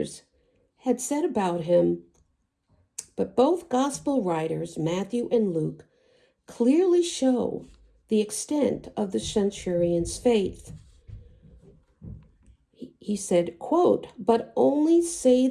had said about him. But both gospel writers, Matthew and Luke, clearly show the extent of the centurion's faith. He said, quote, but only say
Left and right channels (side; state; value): both; identical; correlation 1.00